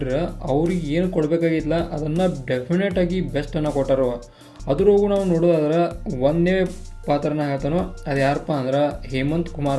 ಅವ್ರಿಗೆ ಏನು ಕೊಡಬೇಕಾಗಿತ್ತಲ್ಲ ಅದನ್ನು ಡೆಫಿನೆಟಾಗಿ ಬೆಸ್ಟನ್ನು ಕೊಟ್ಟಾರ. ಅದ್ರಾಗೂ ನಾವು ನೋಡೋದಾದ್ರೆ ಒಂದೇ ಪಾತ್ರನ ಹೇಳ್ತಾನೋ ಅದು ಯಾರಪ್ಪ ಅಂದ್ರೆ ಹೇಮಂತ್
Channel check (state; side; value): identical; both; correlation 1.00